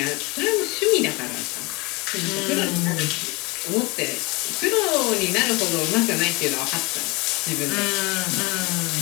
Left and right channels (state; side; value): quieter; right; 26.2 dB